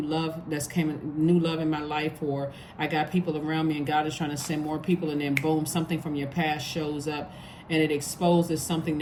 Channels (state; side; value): identical; both; correlation 1.00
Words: love new love in my life, or I got people around me and God is trying to send more people, and then boom, something from your past shows up and it exposes something